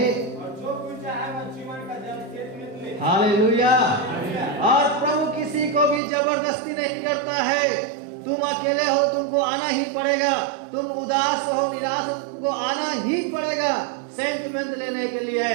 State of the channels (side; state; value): left; drops out; at 6.0 s